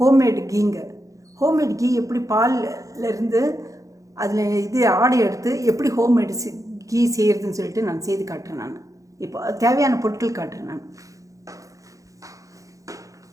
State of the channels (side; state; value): left; late; 0.16 ms